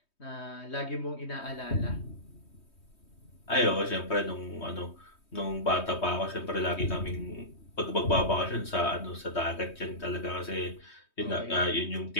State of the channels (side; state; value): right; late; 3.2 ms